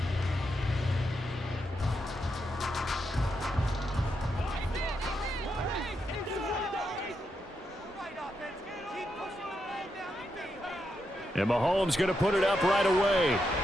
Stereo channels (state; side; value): normal; both; correlation 0.83